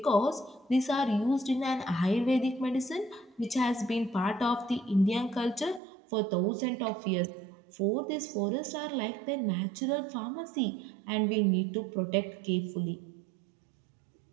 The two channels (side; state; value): left; drops out; at 5.8 s